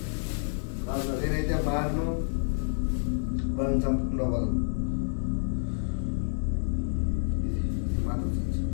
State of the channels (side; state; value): right; silent; digital silence